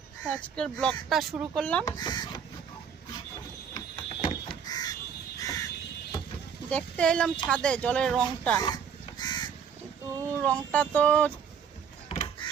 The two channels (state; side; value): quieter; left; 7.4 dB